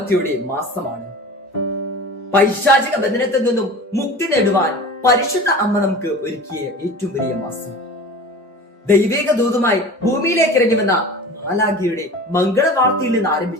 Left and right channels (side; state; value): both; normal; correlation 0.37